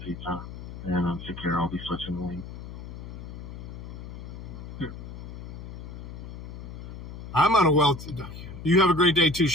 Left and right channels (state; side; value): noise; left; hum, 10 dB below the sound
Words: Pizza, and take care. I'll be switching the lane. I'm on a well. You have a great day too,